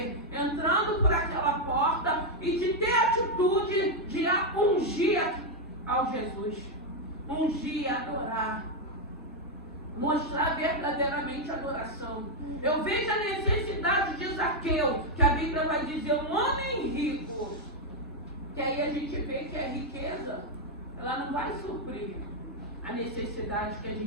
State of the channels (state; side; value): normal; both; correlation 0.01